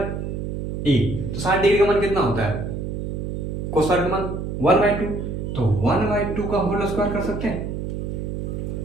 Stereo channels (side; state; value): right; noise; hum, 4 dB below the sound